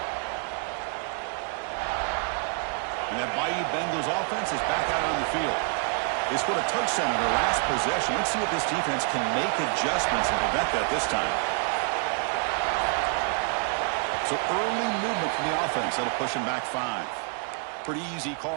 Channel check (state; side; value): quieter; left; 39.7 dB